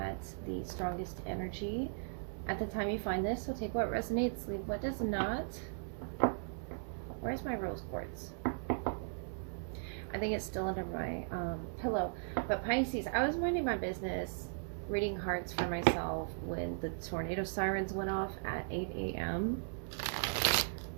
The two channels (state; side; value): silent; left; digital silence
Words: the strongest energy at the time you find this. So take what resonates, leave what does not. Where's my rose quartz? I think it's still under my pillow. But Pisces, I was minding my business, reading cards for myself when the tornado sirens went off at 8 a.m.